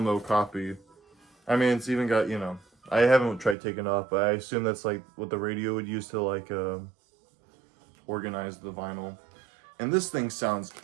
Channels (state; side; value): drops out; left; at 3.6 s